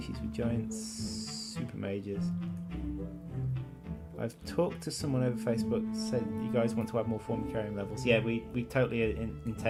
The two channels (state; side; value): identical; both; correlation 1.00